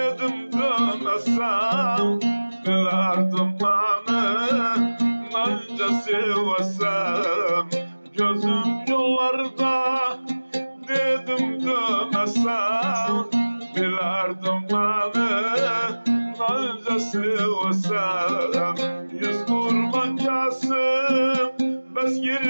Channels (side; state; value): both; inverted; correlation -1.00